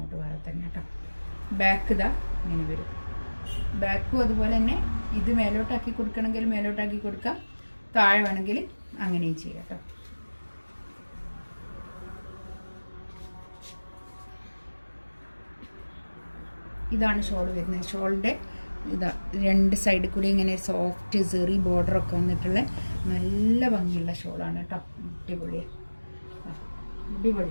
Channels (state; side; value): inverted; both; correlation -1.00